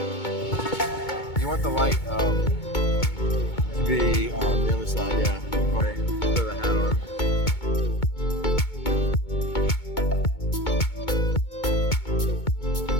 You want the light to be on the other side, yeah. Okay, throw the hat on.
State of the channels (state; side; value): late; right; 2.2 ms